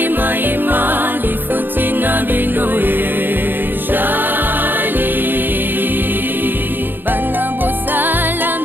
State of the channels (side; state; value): left; late; 0.095 ms